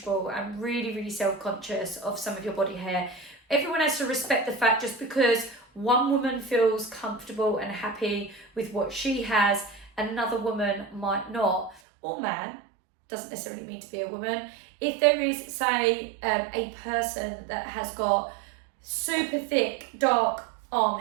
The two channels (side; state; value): left; drops out; at 11.8 s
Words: and really, really self-conscious of some of your body hair, everyone has to respect the fact, just because one woman feels comfortable and happy with what she has, another woman might not, or man, doesn't necessarily mean to be a woman. If there is, say, a person that has got super thick, dark arm